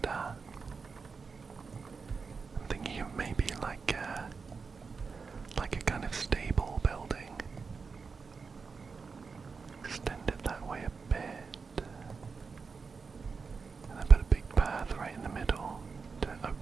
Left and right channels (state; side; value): quieter; left; 5.0 dB